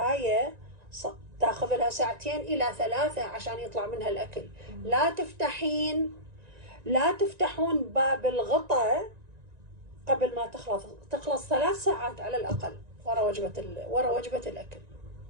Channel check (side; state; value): left; late; 1.9 ms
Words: تاخذ لها 2 إلى 3 عشان يطلع منها الاكل. لا تفتحون باب الغطاء قبل ما تخلص 3 ساعات على الاقل ورا وجبة الاكل.